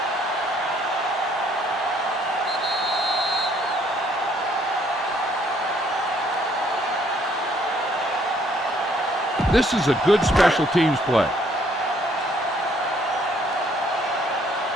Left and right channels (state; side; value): normal; both; correlation 0.65